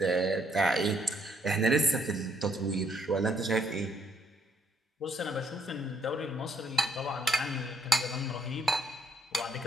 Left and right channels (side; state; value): both; normal; correlation 0.70